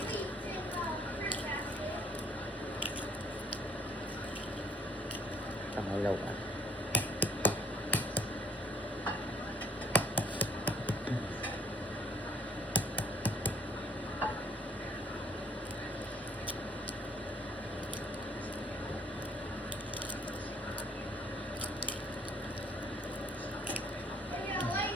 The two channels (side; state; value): both; normal; correlation 0.60